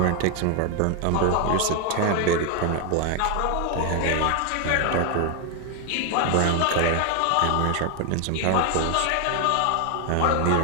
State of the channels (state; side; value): different; both; correlation 0.01